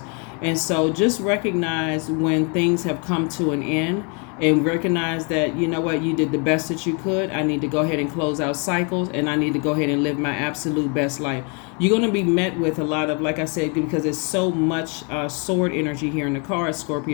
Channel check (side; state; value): right; quieter; 35.1 dB